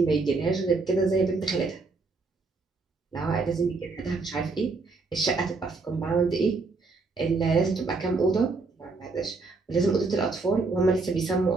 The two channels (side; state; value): left; quieter; 3.9 dB